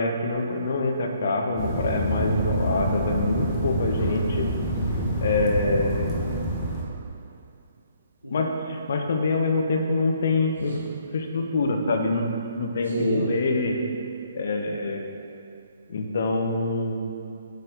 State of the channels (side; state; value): both; inverted; correlation -0.65